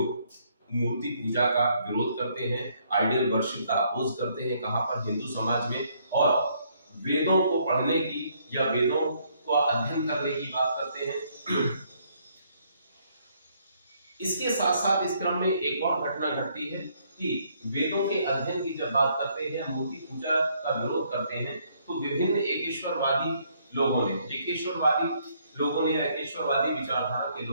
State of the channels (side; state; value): both; inverted; correlation -0.69